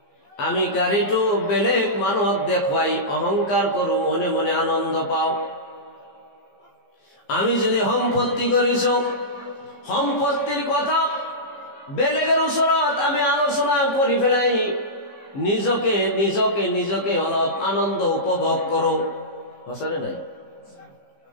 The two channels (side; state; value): right; late; 15 ms